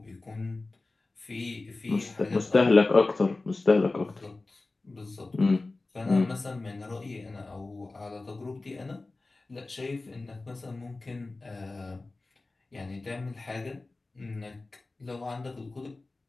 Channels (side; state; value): right; quieter; 3.3 dB